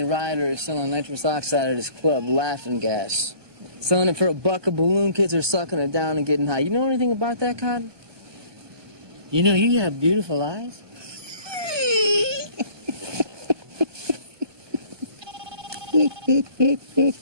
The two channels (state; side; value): late; left; 1.2 ms